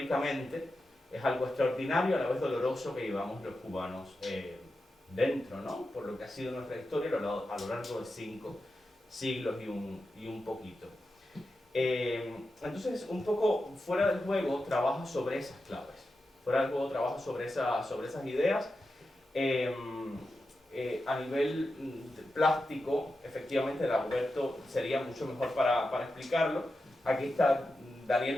es algo extraordinario, a la vez doloroso, que llevamos los cubanos dentro, ¿no? Por lo que ha sido nuestra historia a lo largo de 5 siglos y un poquito. Entonces, un poco Fuera del Juego trabaja sobre esas claves. Fuera del Juego trabaja sobre esas ideas. A nivel plástico, efectivamente, Dagoberto sería mucho mejor para explicarlo. Aquí está Daniel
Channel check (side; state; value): both; normal; correlation 0.90